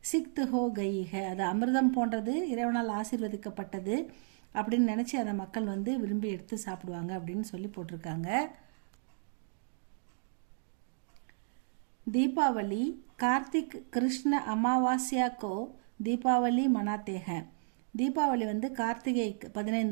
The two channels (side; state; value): left; silent; 56 dB below the other